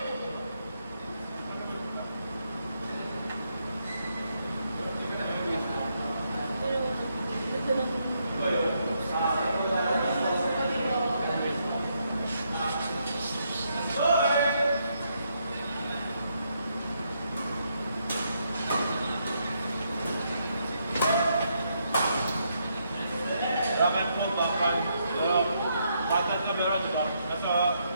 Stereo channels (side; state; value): both; inverted; correlation -0.77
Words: Dapat po bakal. Bakal na meron dito. Nasa